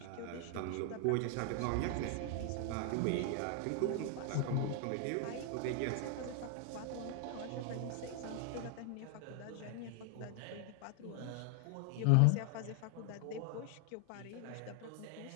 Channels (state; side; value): different; both; correlation 0.00